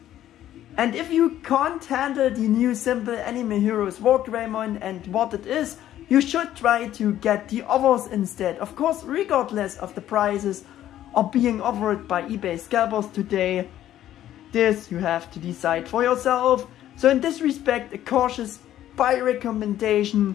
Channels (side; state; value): right; quieter; 12.3 dB